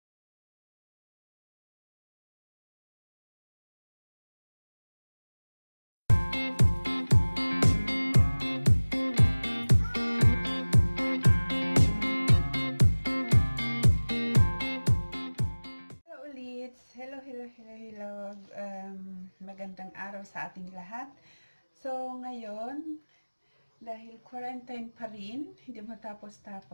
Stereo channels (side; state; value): both; inverted; correlation -1.00